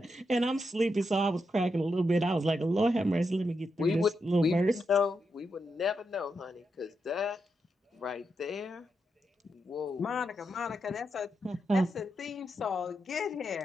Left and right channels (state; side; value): normal; both; correlation 0.84